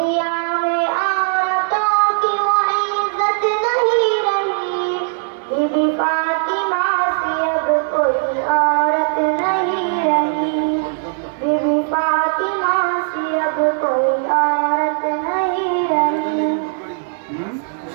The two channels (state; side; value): silent; left; 58 dB below the other